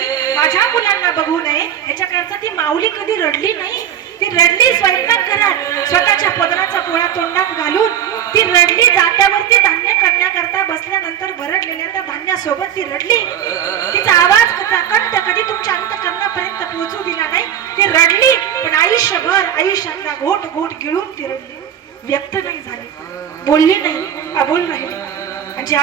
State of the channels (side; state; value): left; quieter; 9.8 dB